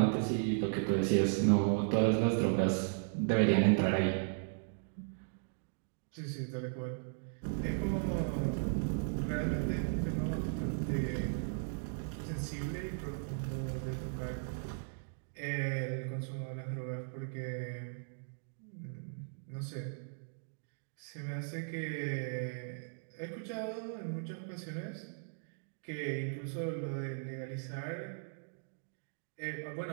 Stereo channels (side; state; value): left; silent; digital silence